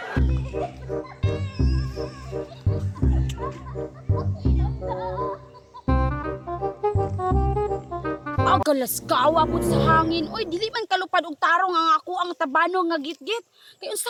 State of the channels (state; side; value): identical; both; correlation 1.00